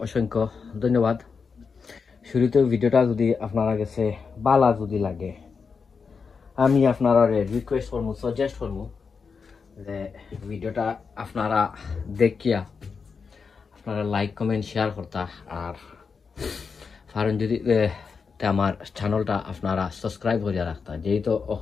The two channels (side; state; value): right; quieter; 5.4 dB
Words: অসংখ্য ধন্যবাদ। শুরুতে ভিডিওটা যদি আপনারা কাছে ভালো যদি লাগে আমি আপনারারে রিকোয়েস্ট করব, সাজেস্ট করব যে ভিডিওটা আপনারা দেখিয়া আপনারা লাইক কমেন্ট শেয়ার করতা, আর কারণ যদি আমার চ্যানেলটা আপনারা সাবস্ক্রাইব করে রাখতা। যেহেতু